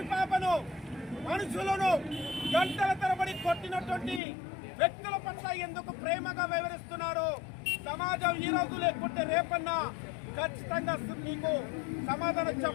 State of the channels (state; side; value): drops out; right; at 4.2 s